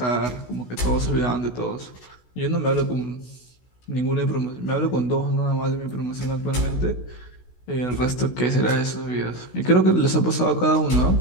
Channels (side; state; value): right; late; 16 ms